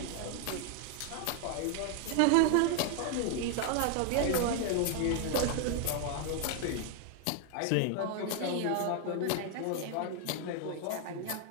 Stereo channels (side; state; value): both; different; correlation 0.00